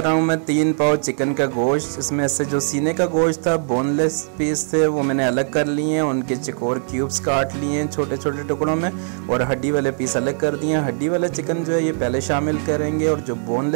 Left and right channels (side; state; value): left; silent; 65 dB below the other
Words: रहा हूँ मैं 3 पाव चिकन का गोश्त। इसमें से जो सीने का गोश्त था, बोनलेस पीस थे, वो मैंने अलग कर लिए हैं। उनके चकोर क्यूब्स काट लिए हैं छोटे छोटे टुकड़ों में, और हड्डी वाले पीस अलग कर दिए हैं। हड्डी वाला चिकन जो है ये पहले शामिल करेंगे, और जो